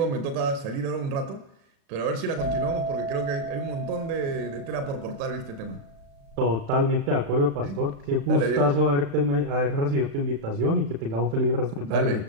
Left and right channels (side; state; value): left; late; 36 ms